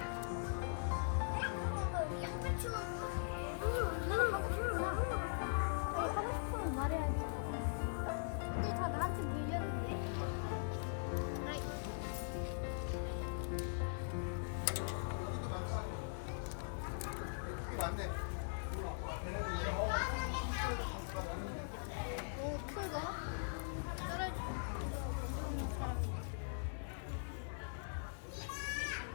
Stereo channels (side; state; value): right; silent; digital silence